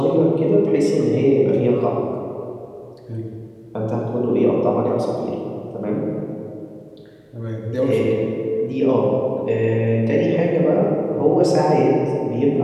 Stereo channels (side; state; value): both; identical; correlation 1.00